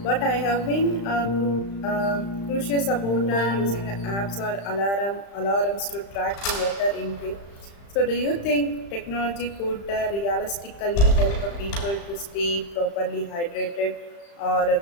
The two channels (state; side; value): late; right; 35 ms